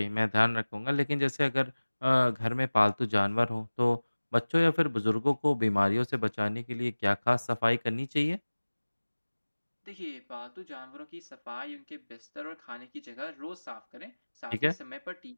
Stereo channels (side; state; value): both; inverted; correlation -1.00